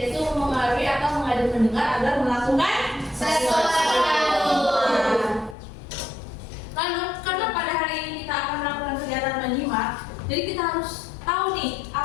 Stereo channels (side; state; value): right; drops out; at 5.6 s